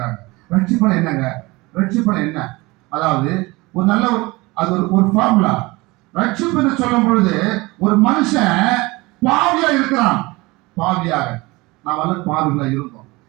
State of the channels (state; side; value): quieter; left; 22.8 dB